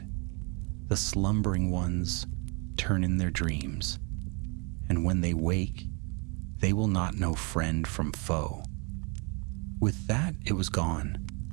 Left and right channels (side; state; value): left; quieter; 32.3 dB